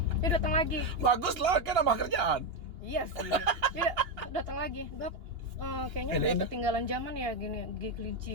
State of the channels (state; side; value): late; left; 2.8 ms